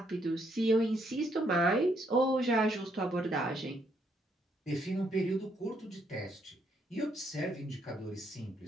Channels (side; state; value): both; normal; correlation 0.73